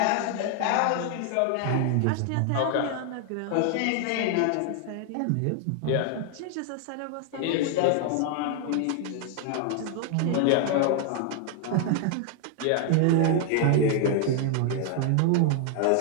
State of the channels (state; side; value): different; both; correlation 0.00